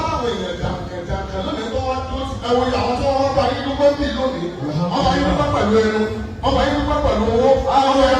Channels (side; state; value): both; identical; correlation 1.00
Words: láwọn èèyàn jàǹkànjàǹkàn lónìí tó wá tó ẹwọ àwọn tó wọ́n bá yín dúpẹ́ bí lónìí wọ́n bá yín dúpẹ́ pẹ̀lú ẹnu wọ́n bá yín dúpẹ́ pẹ̀lú owó wọ́n bá